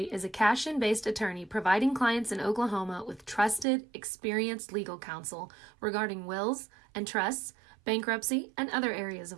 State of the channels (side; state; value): left; drops out; at 3.7 s